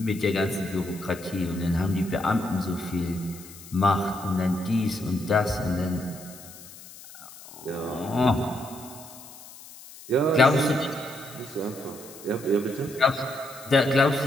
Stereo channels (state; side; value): noise; left; hiss, 18 dB below the sound